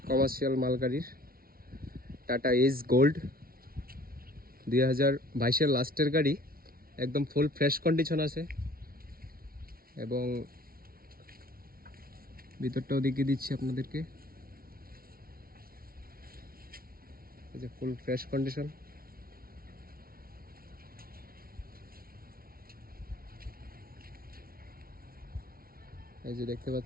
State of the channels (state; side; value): late; left; 0.43 ms